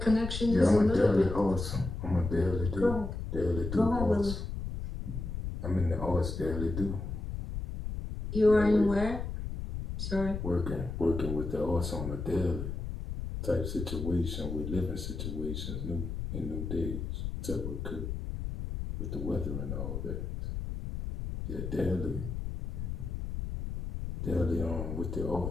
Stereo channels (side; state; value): left; noise; rumble, 5 dB below the sound